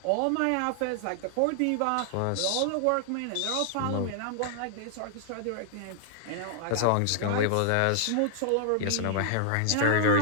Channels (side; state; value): both; different; correlation 0.00